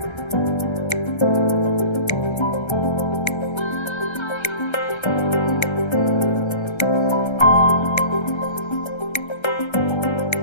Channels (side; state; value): right; late; 1.3 ms